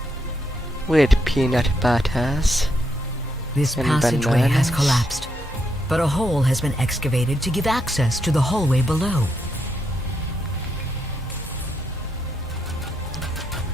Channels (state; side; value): normal; both; correlation 0.79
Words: With peanut butters. This And passageway has bananas. collapsed, but a hole has been excavated to give access to the hallway below.